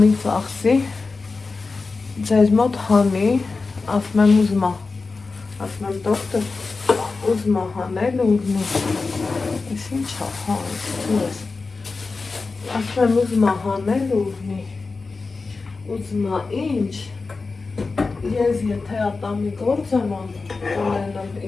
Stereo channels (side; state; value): right; quieter; 4.1 dB